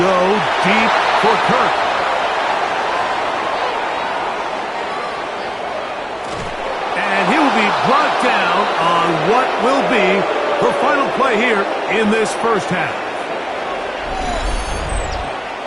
deep for Kirk. Brought down on what will be the final play here in this first half.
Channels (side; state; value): both; identical; correlation 1.00